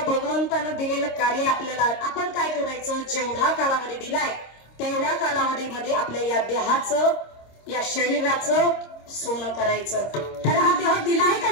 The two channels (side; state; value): right; late; 26 ms